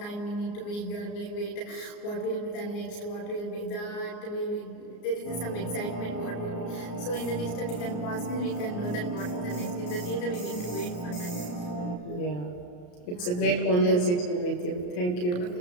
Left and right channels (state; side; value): late; right; 34 ms